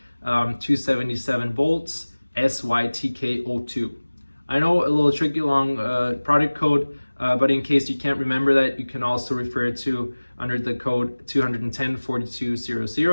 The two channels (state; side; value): inverted; both; correlation -1.00